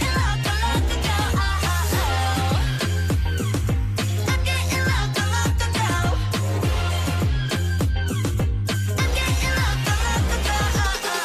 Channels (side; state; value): both; identical; correlation 1.00